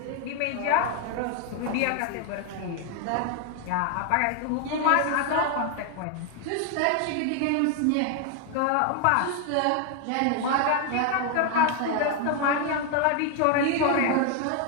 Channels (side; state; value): both; different; correlation 0.00